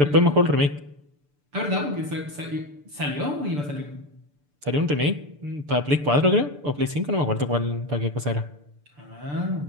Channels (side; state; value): left; late; 6.8 ms